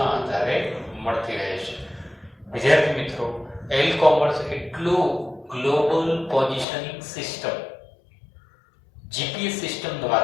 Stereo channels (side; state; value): right; drops out; at 6.7 s